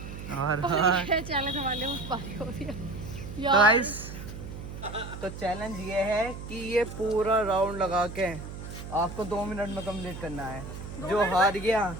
और चैलेंज हमारे मुझ पारी हो रही है तो गाइस, तो चैलेंज ये है कि ये पूरा राउंड लगा के आपको 2 मिनट में कंप्लीट करना है। जो हार गया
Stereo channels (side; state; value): right; noise; hum, 10 dB below the sound